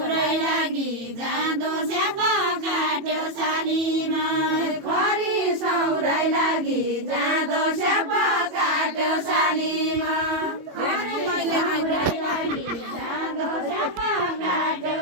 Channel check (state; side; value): late; left; 21 ms